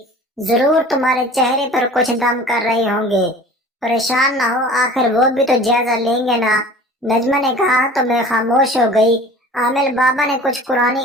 जरूर तुम्हारे चेहरे पर कुछ दम कर रहे होंगे। परेशान ना हो, आखिर वो भी तो जायजा लेंगे ना। नजमा ने कहा तो मैं खामोश हो गई। आमिर बाबा ने कुछ कुरानी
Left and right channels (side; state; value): both; normal; correlation 0.43